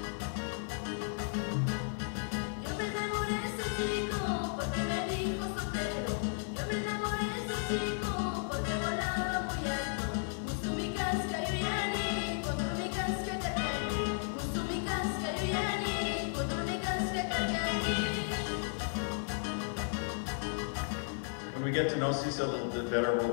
When we get to know Sisa a little bit better,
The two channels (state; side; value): silent; right; 55 dB below the other